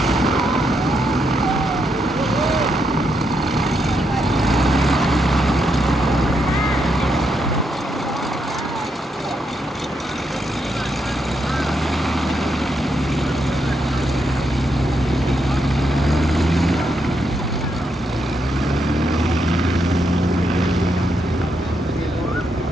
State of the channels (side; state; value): both; normal; correlation 0.80